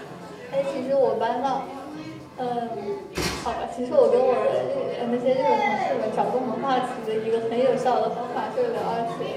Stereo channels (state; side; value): identical; both; correlation 1.00